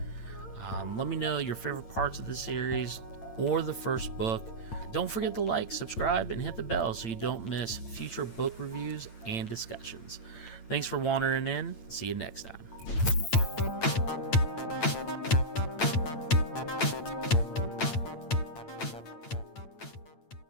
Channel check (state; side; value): late; right; 8.8 ms